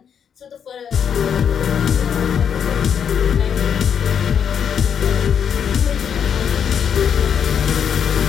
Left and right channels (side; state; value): right; quieter; 7.9 dB